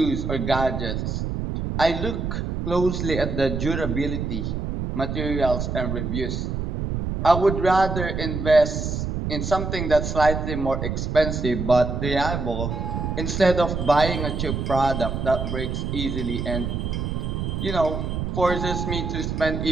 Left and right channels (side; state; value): right; noise; rumble, 3 dB below the sound